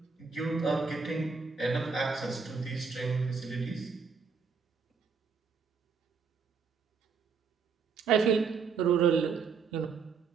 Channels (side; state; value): left; quieter; 5.4 dB